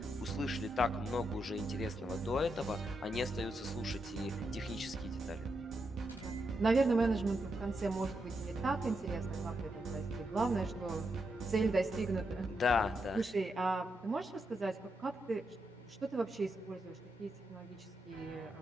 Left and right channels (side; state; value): both; normal; correlation 0.83